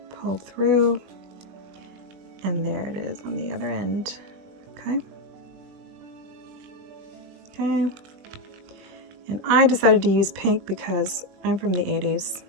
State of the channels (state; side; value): late; left; 20 ms